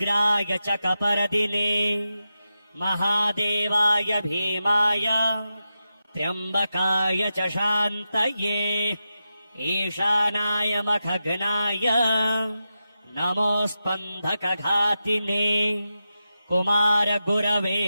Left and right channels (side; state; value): both; inverted; correlation -0.90